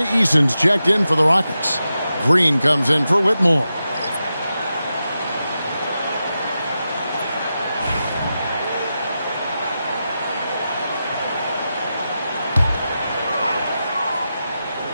Eason's checked in for the Rockets. Green comes in for Whitmore.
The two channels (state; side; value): inverted; both; correlation -0.90